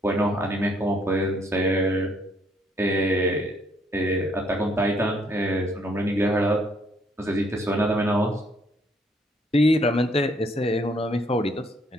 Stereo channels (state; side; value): normal; both; correlation 0.68